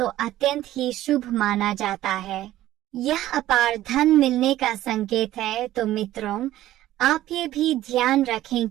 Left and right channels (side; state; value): left; quieter; 14.3 dB